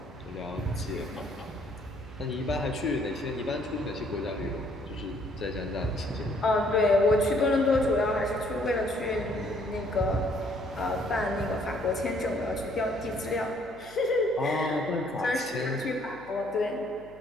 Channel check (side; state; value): left; noise; hum, 21 dB below the sound